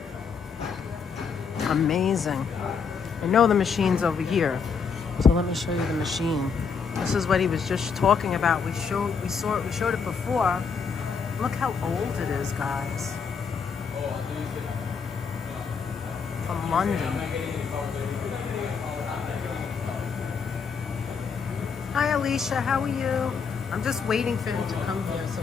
Amazing. I know the machine's over here, so let me show you the machine. This is what he was just talking about. We showed it before. Look how old it is, guys. From London. Hi, Alicia. How are you? I'm just waiting for him to come here so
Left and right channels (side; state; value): right; quieter; 5.9 dB